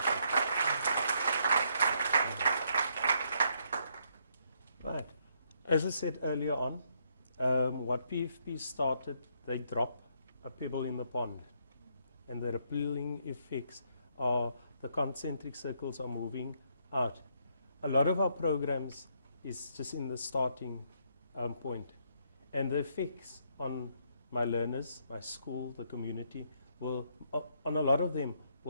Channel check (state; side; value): inverted; both; correlation -0.73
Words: Right. As I said earlier on, what PFP started, they drop a pebble in the pond. And the rippling effects are the concentric circles are moving out. A lot of our programs is just in the starting point. And the effects on my learners, my school, the community, will, on a lot of them,